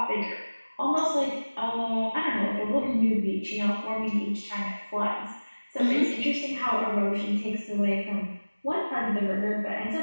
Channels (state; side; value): inverted; both; correlation -1.00